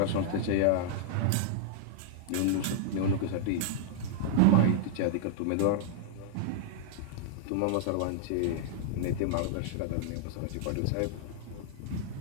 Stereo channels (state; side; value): different; both; correlation -0.01